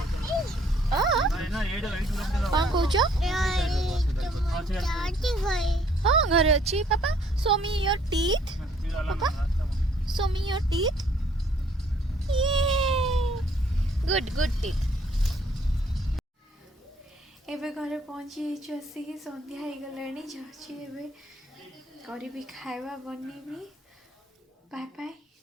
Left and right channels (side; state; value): both; normal; correlation 0.63